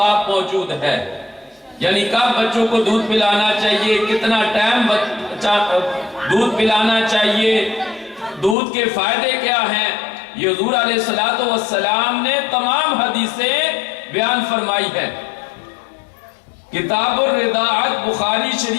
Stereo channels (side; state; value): right; drops out; at 8.6 s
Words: موجود ہے، یعنی کب بچوں کو دودھ پلانا چاہیے، کتنا ٹائم دودھ پلانا چاہیے، دودھ کے فائدے کیا ہیں، یہ حضور علیہ السلام نے تمام حدیثیں بیان فرمائی ہے۔ کتاب الرضاعت بخاری